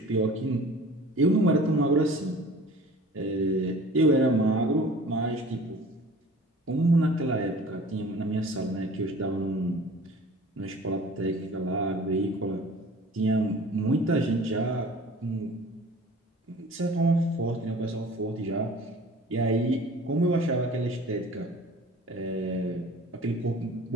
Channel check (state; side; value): normal; both; correlation 0.45